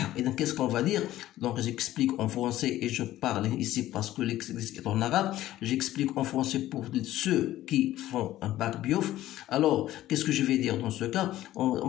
إذا qu'est-ce qu'on va dire? Donc j'explique en français et je parle ici parce que l'exercice est en arabe. J'explique en français pour ceux qui font un bac biof. Alors qu'est-ce que je vais dire dans ce cas? On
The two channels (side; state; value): right; quieter; 14.4 dB